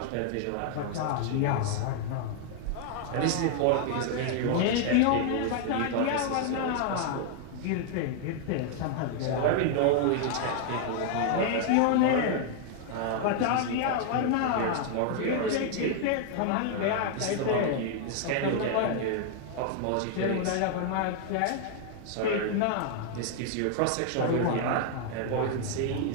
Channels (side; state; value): both; different; correlation 0.00